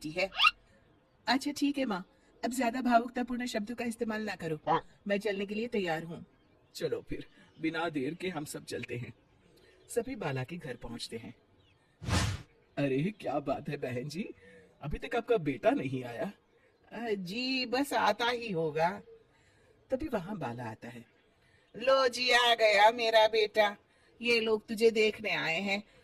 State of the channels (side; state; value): both; identical; correlation 1.00